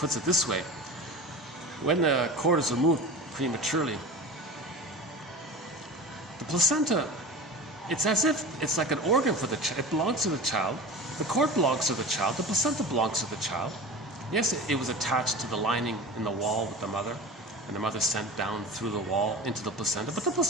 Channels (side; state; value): both; normal; correlation 0.34